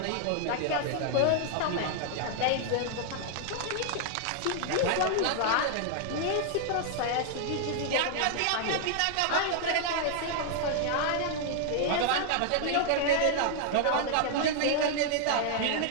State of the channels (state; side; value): different; both; correlation 0.00